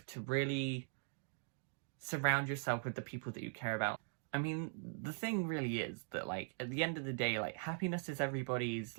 to really surround yourself with the people that you care about. I mean, the thing really is that, like, at the end of the day, like, happiness is everybody's,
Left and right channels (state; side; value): silent; left; 50 dB below the other